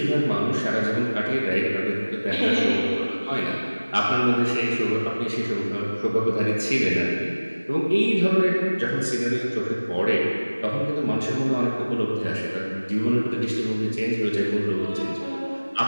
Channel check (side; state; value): both; inverted; correlation -1.00